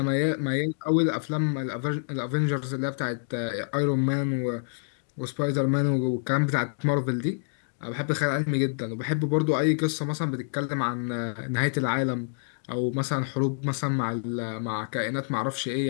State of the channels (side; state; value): right; silent; digital silence